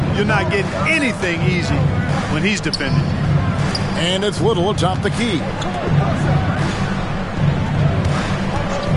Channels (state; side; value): identical; both; correlation 1.00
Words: You're not getting anything easy when he's defending. And it's Little atop the key.